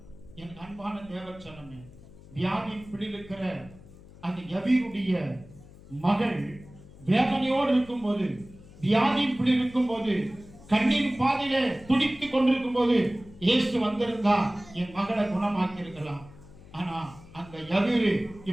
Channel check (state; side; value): noise; left; hum, 20 dB below the sound